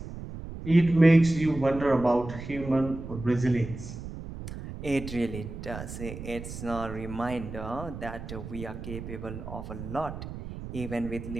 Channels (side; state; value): right; noise; rumble, 10 dB below the sound